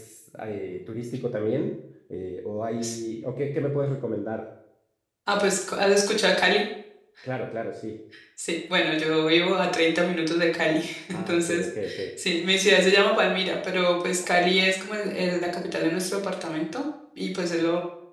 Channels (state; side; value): identical; both; correlation 1.00